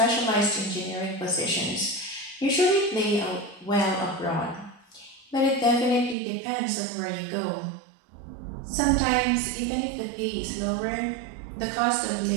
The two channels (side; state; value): left; drops out; at 6.2 s